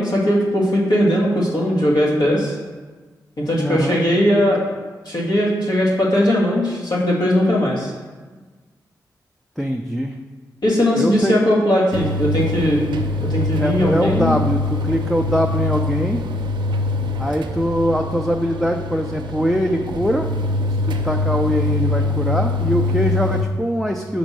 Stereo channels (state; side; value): normal; both; correlation 0.72